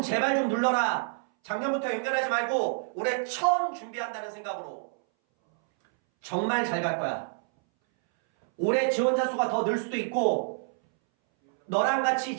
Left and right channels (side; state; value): left; silent; 59 dB below the other